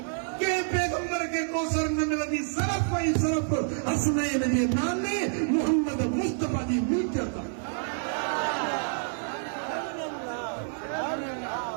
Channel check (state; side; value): silent; left; digital silence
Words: के पैगंबर के कौसर न मिलंदी सिर्फ़ ऐं सिर्फ़ हसनैन जे नाने मोहम्मद मुस्तफा जी मिल्कियत।